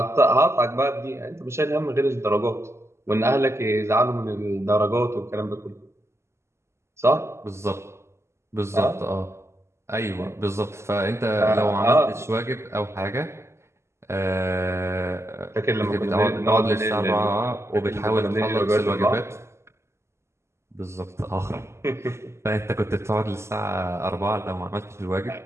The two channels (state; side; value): late; left; 0.13 ms